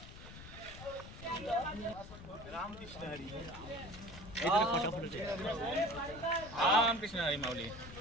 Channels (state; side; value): noise; left; rumble, 14 dB below the sound